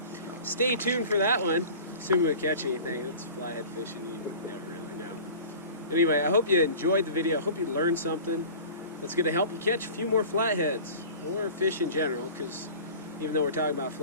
stay tuned for that one. Assuming we catch anything. It's flathead fishing, you never really know. Anyway, I hope you enjoyed the video. I hope you learned something that's going to help you catch a few more flatheads, or fish in general, because even though we're talking about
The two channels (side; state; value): both; inverted; correlation -0.40